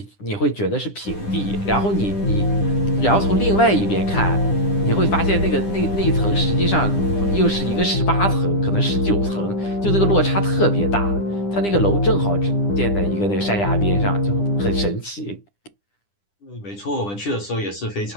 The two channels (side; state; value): right; late; 10 ms